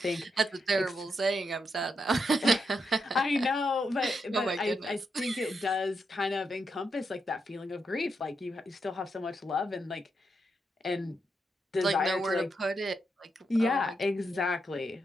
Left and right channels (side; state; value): both; normal; correlation 0.82